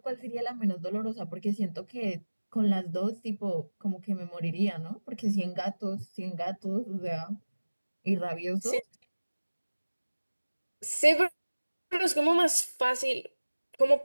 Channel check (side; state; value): both; inverted; correlation -1.00